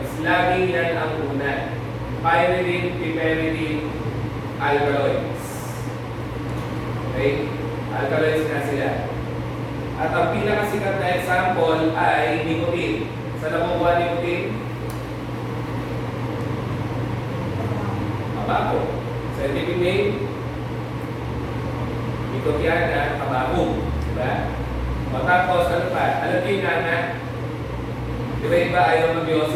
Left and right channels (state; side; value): identical; both; correlation 1.00